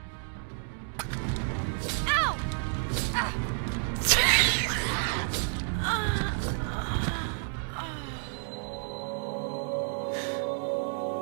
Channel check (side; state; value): left; silent; 58 dB below the other